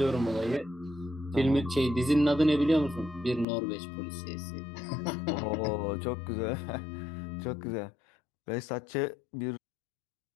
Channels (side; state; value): right; drops out; at 3.5 s